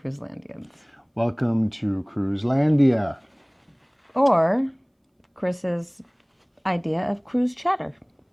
Welcome to Cruiselandia. Or Chris's idea of cruise chatter.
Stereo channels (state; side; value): identical; both; correlation 1.00